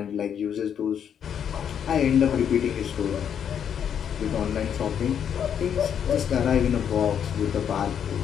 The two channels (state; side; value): quieter; right; 8.5 dB